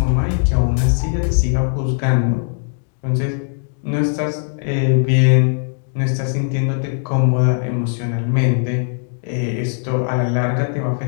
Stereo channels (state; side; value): silent; right; digital silence